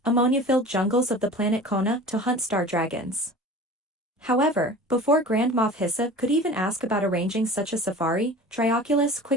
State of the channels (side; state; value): both; normal; correlation 0.39